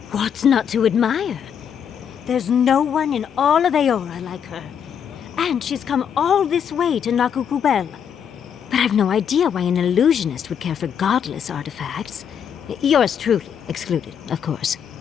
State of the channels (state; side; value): quieter; right; 8.0 dB